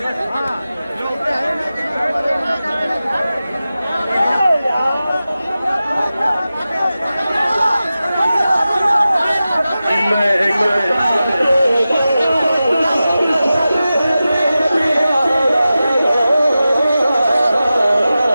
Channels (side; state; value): both; inverted; correlation -0.94